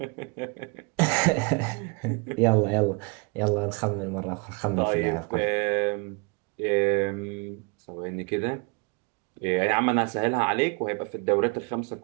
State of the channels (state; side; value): quieter; left; 31.6 dB